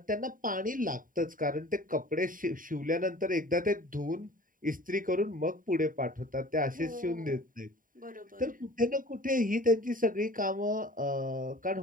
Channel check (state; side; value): late; left; 0.40 ms